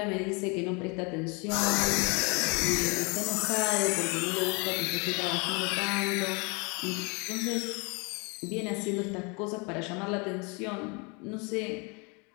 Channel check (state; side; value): quieter; right; 31.2 dB